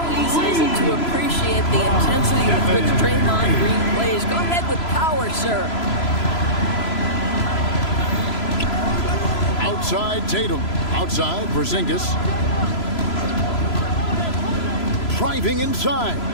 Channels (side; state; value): right; late; 3.0 ms